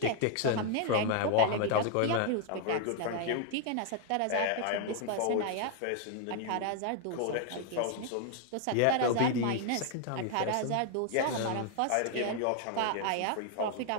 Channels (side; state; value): both; different; correlation 0.00